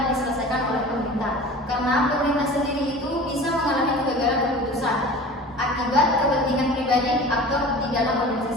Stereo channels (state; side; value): normal; both; correlation 0.39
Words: diselesaikan oleh pemerintah, karena pemerintah sendiri itu bisa mengalami kegagalan keputusan akibat kepentingan pribadi aktor di dalam